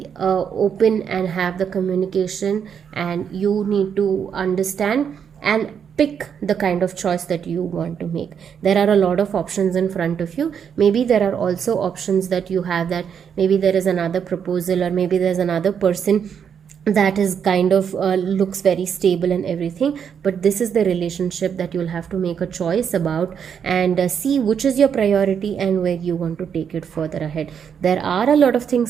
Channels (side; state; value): left; quieter; 7.6 dB